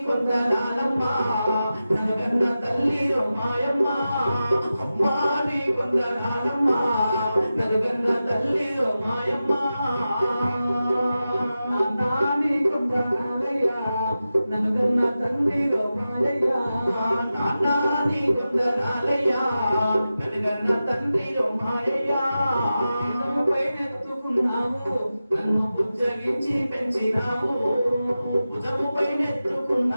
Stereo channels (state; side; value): inverted; both; correlation -0.93